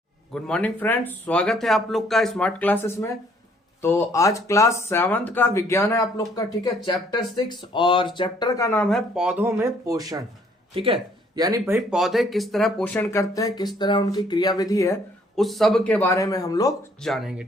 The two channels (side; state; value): both; normal; correlation 0.63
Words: Good morning friends, स्वागत है आप लोग का स्मार्ट क्लासेस में। तो आज क्लास 7th का विज्ञान है आप लोग का, ठीक है। चैप्टर 6 और चैप्टर का नाम है पौधों में पोषण, ठीक है। यानी भाई पौधे किस तरह पोषण करते हैं, किस तरह उनकी क्रियाविधि है, उस सब के बारे में हम लोग जानेंगे,